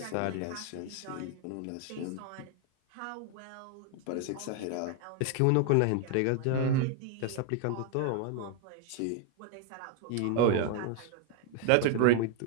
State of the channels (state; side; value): different; both; correlation 0.00